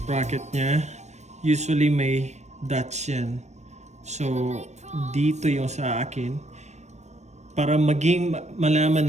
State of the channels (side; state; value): left; late; 0.33 ms